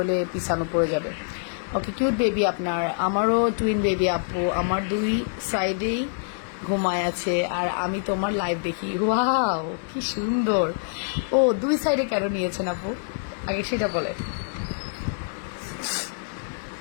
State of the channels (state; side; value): silent; right; digital silence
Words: পিছানো পড়ে যাবে। ওকে, কিউট বেবি আপনার। আমারও টুইন বেবি আপু, আমার 2 সাইডেই ঘুমায় আছে, আর আমি তোমার লাইভ দেখি। ওয়াও, কি সুন্দর। ও, 2 সাইডে কেন নিয়েছেন আপু, আগে সেটা বলে।